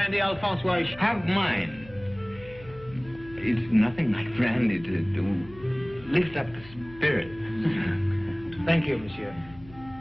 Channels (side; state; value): left; noise; hum, 20 dB below the sound